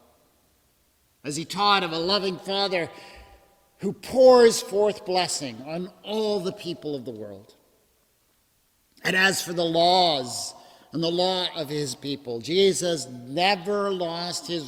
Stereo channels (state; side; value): identical; both; correlation 1.00